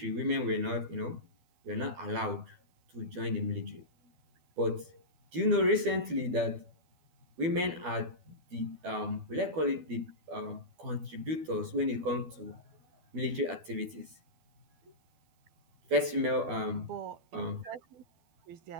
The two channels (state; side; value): late; left; 12 ms